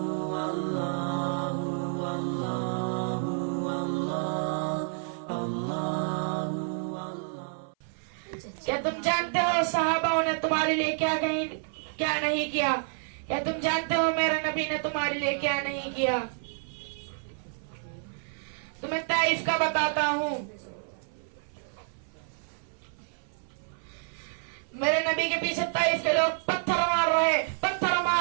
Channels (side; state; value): left; silent; 56 dB below the other